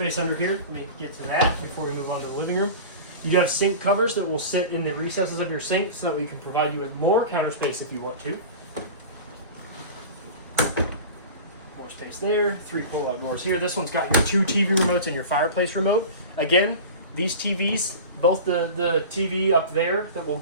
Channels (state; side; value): inverted; both; correlation -0.34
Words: under here. Let me get to that before we move on to the living room. You do have sink covers that will sit in the recesses of your sink so that we can provide you with more counter space if you want to. More space there, 3 pull-out drawers here. This one's got your 2 TV remotes and your fireplace remote. Again, these TVs, both the TV up there that we'll